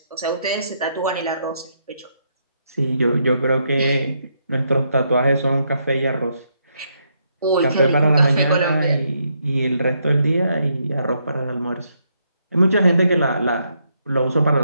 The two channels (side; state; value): both; inverted; correlation -0.77